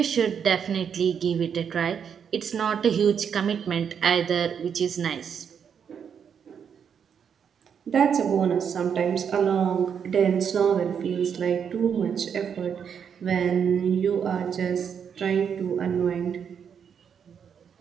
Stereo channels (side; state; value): left; quieter; 7.5 dB